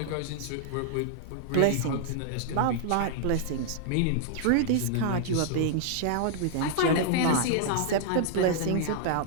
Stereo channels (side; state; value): both; different; correlation -0.01